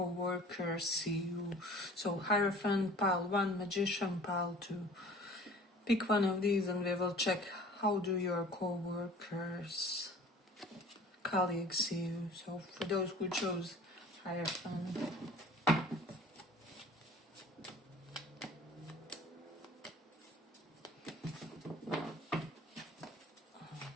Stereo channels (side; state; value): both; normal; correlation 0.46